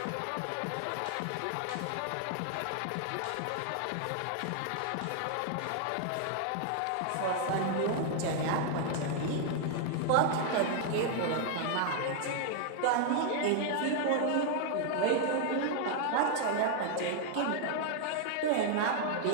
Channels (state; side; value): different; both; correlation 0.00